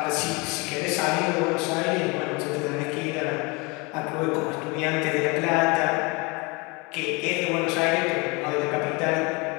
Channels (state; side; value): quieter; right; 27.9 dB